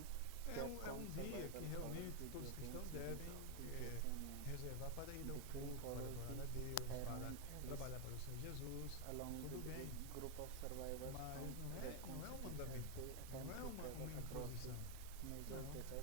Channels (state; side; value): different; both; correlation 0.01